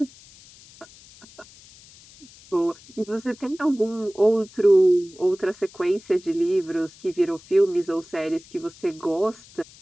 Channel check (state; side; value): noise; left; hiss, 23 dB below the sound